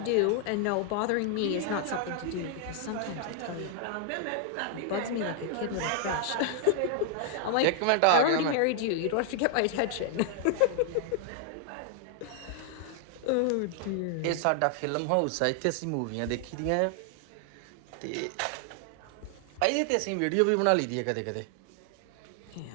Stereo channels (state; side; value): different; both; correlation 0.00